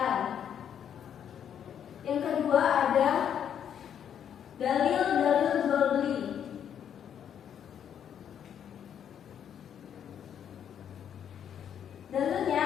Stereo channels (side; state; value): right; quieter; 8.9 dB